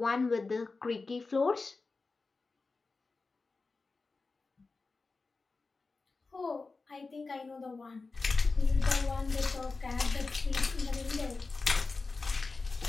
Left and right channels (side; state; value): right; quieter; 3.9 dB